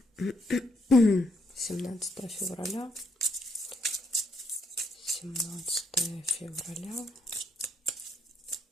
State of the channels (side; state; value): both; normal; correlation 0.74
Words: 17 февраля. 17 февраля.